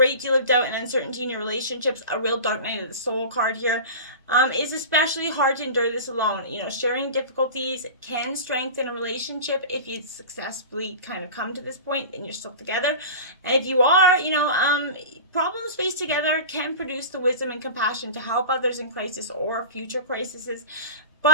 deal of doubt and uncertainty in your relationships. A real dark night of the soul card here. It's especially hard to endure this alone. Sharing difficulties can strengthen a relationship if you successfully kind of come to this point and you're still together. And if you are, problems faced together can produce the wisdom and compassion to help others in crisis or future crises.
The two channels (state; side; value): inverted; both; correlation -0.32